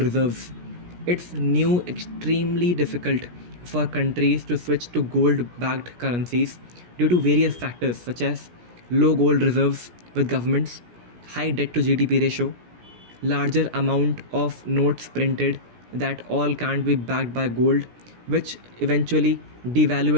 reserves. It's new extremely difficult for countries to switch to gold backed currencies due to various factors such as low gold reserves with governments, high debt to GDP ratio, larger amount of notes printed that all can't be backed by gold, which eventually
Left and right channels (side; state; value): left; late; 17 ms